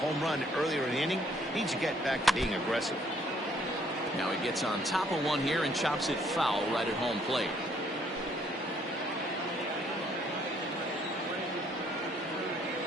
run earlier in the inning. Needs to get back to being aggressive. Now he gets on top of one here and chops it foul right at home plate.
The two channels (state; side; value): normal; both; correlation 0.65